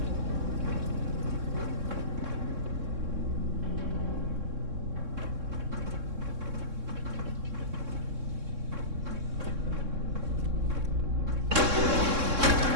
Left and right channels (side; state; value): left; late; 3.6 ms